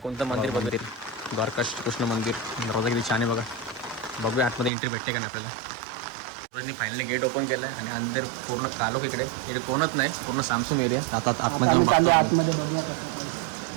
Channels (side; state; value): left; drops out; at 4.7 s